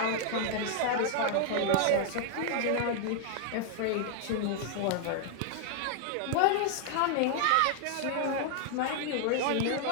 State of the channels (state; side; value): different; both; correlation 0.00